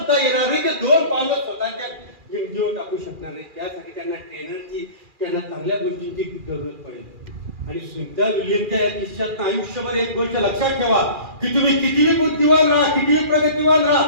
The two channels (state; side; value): late; left; 2.4 ms